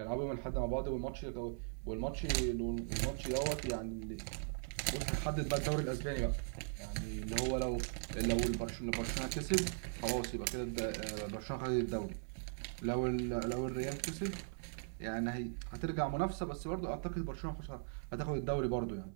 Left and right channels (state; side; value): silent; left; 52 dB below the other